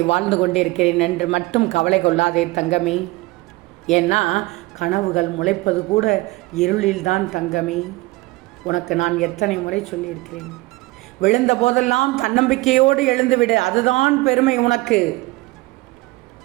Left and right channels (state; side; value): quieter; left; 21.6 dB